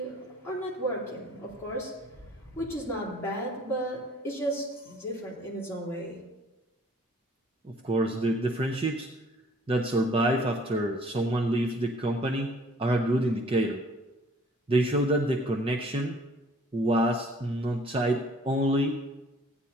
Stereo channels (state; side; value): normal; both; correlation 0.56